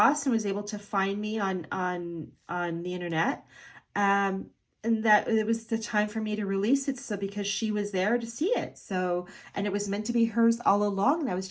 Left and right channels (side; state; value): both; identical; correlation 1.00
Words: and was able to find me on the internet. And that it was the time for me to release it. So because she was there to see it. So, and it was meant to be hers all along, and I was